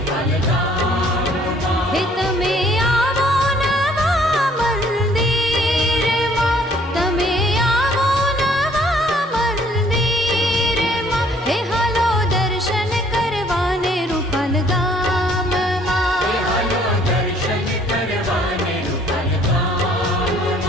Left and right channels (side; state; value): both; normal; correlation 0.60